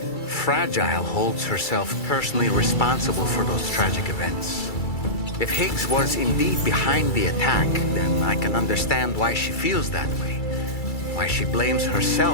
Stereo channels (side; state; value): right; late; 2.3 ms